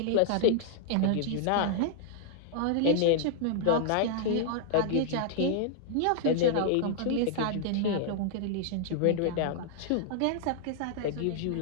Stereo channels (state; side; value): different; both; correlation -0.01